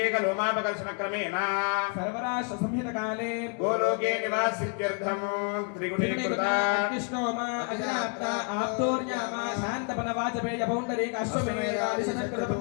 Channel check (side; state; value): right; quieter; 38.1 dB